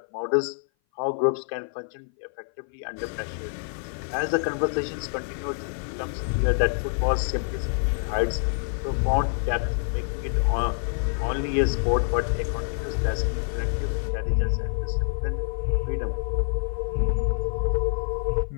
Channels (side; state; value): right; silent; 57 dB below the other